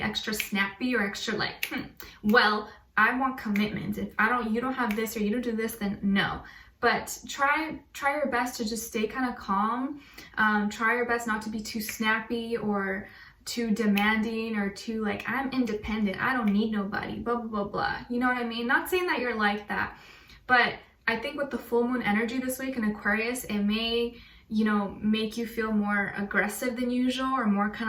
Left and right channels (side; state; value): both; identical; correlation 1.00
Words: snappy, or extra like, well, I want commitment. If you don't have this, or you don't do this, then no. But try your best to just stay kind of calm. Try your best not to be too snappy or too demanding, or too like, I'm independent, I don't need nobody, blah, blah, blah, blah. You know what I mean? Not saying that you're like that, but I think with the full moon energy this week in Aquarius, it may, you know, make you feel more aggressive than usual, or more